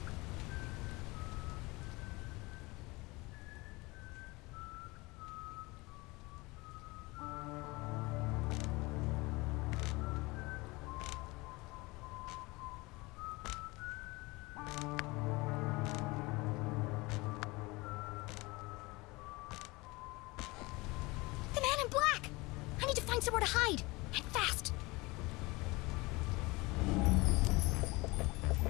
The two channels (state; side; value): quieter; right; 23.5 dB